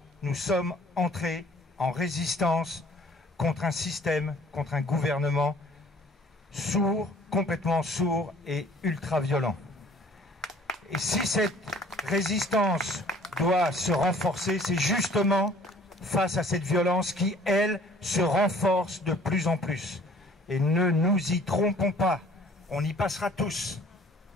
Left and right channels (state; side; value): normal; both; correlation 0.54